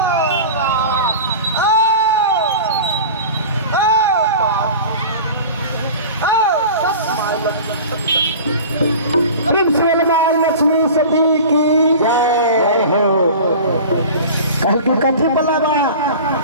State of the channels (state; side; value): inverted; both; correlation -0.36